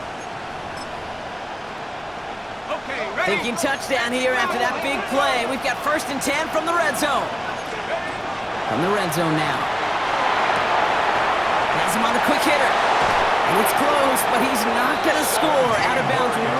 Thinking touchdown here after that big play. We've got first and 10 from the red zone. From the red zone now. Has him on the quick hitter. And it's close, but he's not going to score. Out of bounds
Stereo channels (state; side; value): identical; both; correlation 1.00